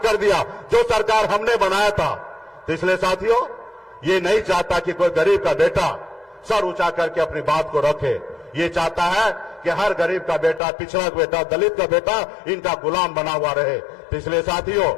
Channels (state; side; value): drops out; right; at 10.6 s